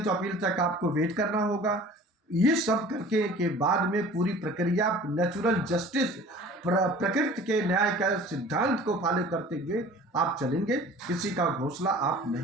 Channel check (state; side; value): normal; both; correlation 0.45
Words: तो अपील तक आपको वेट करना होगा। ये सब करके के बाद में पूरी प्रक्रिया नेचुरल जस्टिस, प्रकृति के न्याय का सिद्धांत को फॉलो करते हुए आप चलेंगे। किसी का घोंसला आप